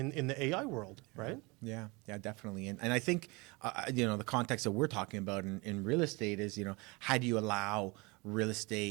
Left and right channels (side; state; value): left; quieter; 26.5 dB